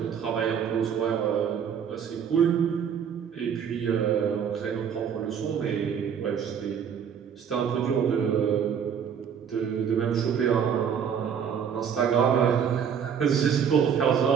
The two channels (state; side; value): quieter; left; 7.7 dB